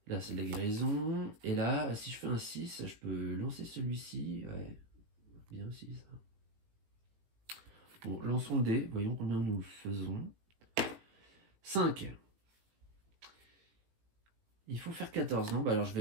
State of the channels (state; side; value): late; left; 18 ms